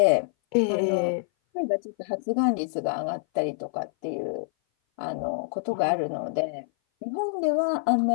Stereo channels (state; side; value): silent; right; 58 dB below the other